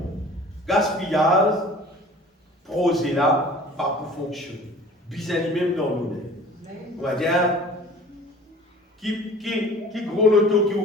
gaspillage, projet là, pas pour fonctionner. Bizarre même dans nous. On va dire, qui gros loto qui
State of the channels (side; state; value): both; normal; correlation 0.45